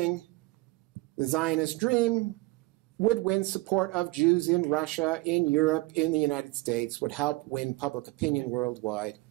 the Zionist dream would win support of Jews in Russia, in Europe, in the United States, would help win public opinion worldwide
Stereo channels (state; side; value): quieter; left; 22.3 dB